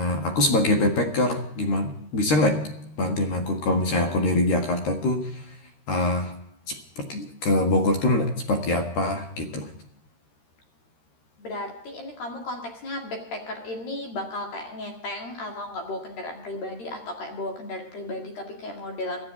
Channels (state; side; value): late; right; 13 ms